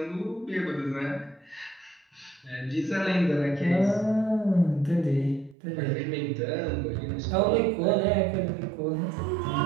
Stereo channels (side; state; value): left; drops out; at 5.6 s